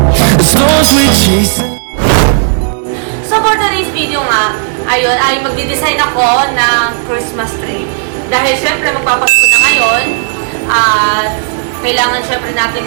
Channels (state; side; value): silent; left; 66 dB below the other